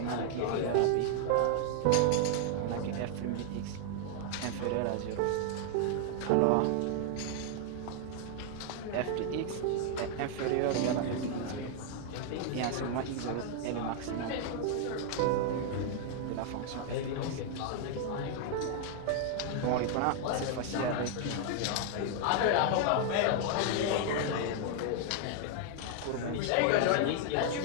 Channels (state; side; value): different; both; correlation 0.00